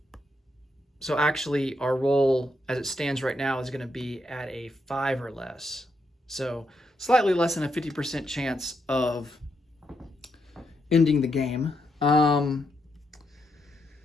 actually our roll as it stands right now is going to be at a 5 or less. So slightly less than a 50% chance of ending the game.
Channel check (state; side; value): normal; both; correlation 0.80